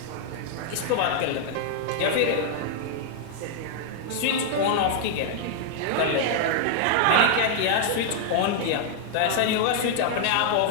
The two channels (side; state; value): both; different; correlation 0.00